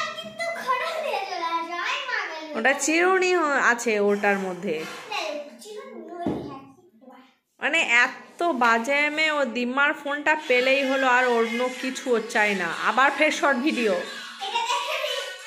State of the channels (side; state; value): both; identical; correlation 1.00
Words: কিন্তু খড়া দিয়ে চলে আসে। আই মা গেল, ওটা চিরুনি আছে ওটার মধ্যে। মানে এত বাজে মেয়ে, ও দিম্মার ফোনটা পেলেই হলো, আর অন্য কিছু ওর চাই না। আবার ফের শর্ট ভিডিও।